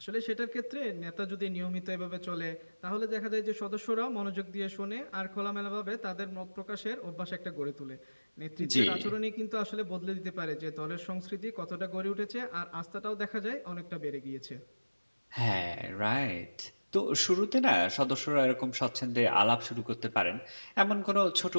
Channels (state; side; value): inverted; both; correlation -1.00